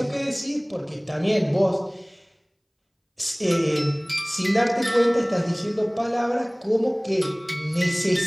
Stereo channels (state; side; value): identical; both; correlation 1.00